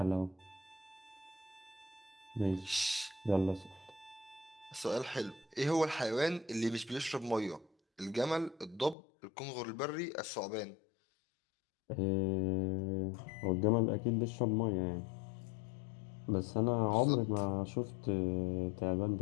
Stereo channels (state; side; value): drops out; right; at 9.0 s